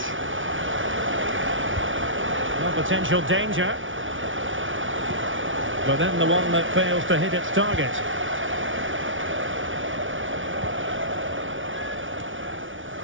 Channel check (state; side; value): late; left; 0.57 ms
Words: No potential danger. But then the one that fails to hit its target.